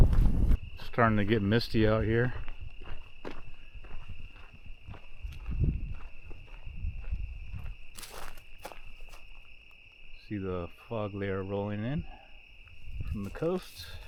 Starting to get misty out here. See the fog layer rolling in from the coast.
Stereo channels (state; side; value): identical; both; correlation 1.00